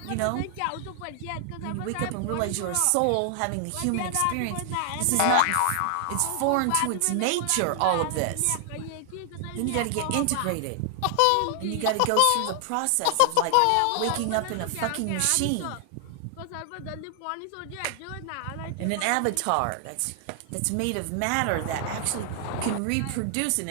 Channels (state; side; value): different; both; correlation 0.00